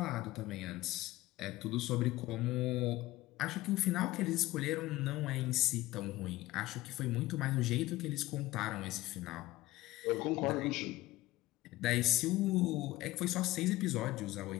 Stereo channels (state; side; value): quieter; right; 17.7 dB